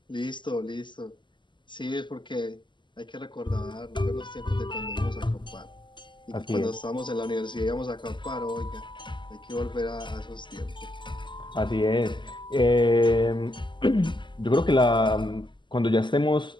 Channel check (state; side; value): late; right; 0.23 ms